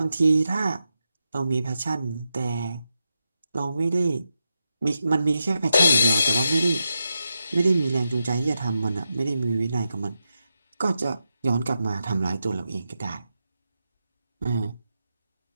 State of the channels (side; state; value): both; inverted; correlation -0.87